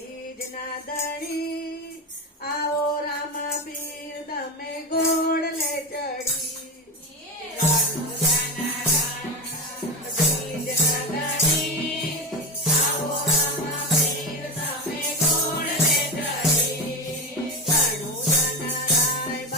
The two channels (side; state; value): both; normal; correlation 0.19